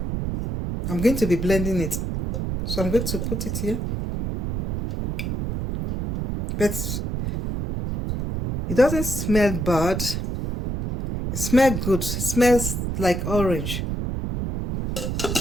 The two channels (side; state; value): right; noise; rumble, 3 dB below the sound